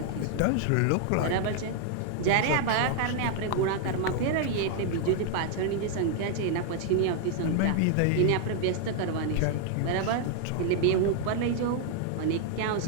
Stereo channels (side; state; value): both; different; correlation 0.00